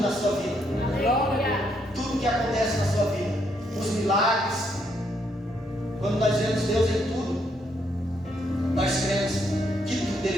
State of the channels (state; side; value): normal; both; correlation 0.74